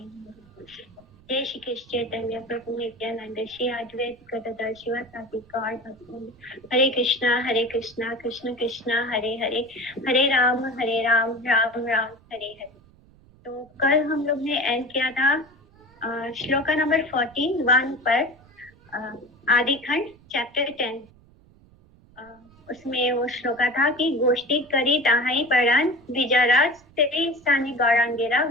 जय श्री कृष्ण चैतन्य प्रभु नित्यानंद श्री अद्वैत गदाधर शिवासादि गौर भक्त हरे कृष्णा कृष्ण कृष्णा हरे हरे हरे राम राम राम हरे हरे। तो कल हम लोग ने एंड किया था श्लोका नंबर 41 पर आदि खंड चैप्टर 10। उसमें वो श्लोका था कि गोष्ठी करी ताहाई परान विजाराज तेरी स्थानी गौरांगेरा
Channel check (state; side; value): noise; right; rumble, 27 dB below the sound